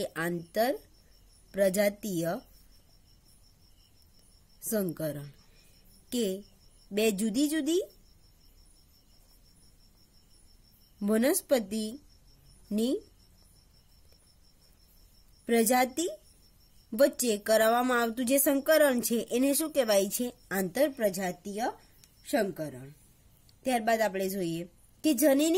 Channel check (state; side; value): identical; both; correlation 1.00